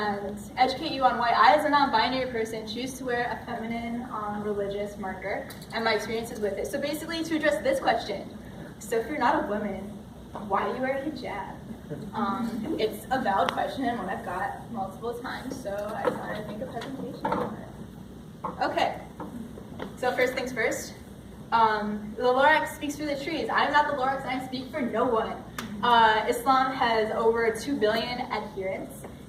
educate you on why I, as a non-binary person, choose to wear a feminine religious marker and my experiences with it. So basically, to address this question, so if you're not a woman, why do you wear a hijab? It's a valid question and one I've got multiple times, so I thought I'd make a presentation on it. Okay, so first things first. The Lorax speaks for the trees. I'm not the Lorax and I speak for no one. Islam has over 2 billion adherents,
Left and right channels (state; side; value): identical; both; correlation 1.00